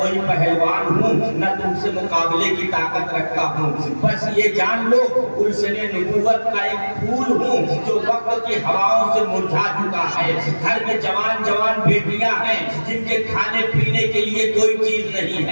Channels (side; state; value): both; inverted; correlation -1.00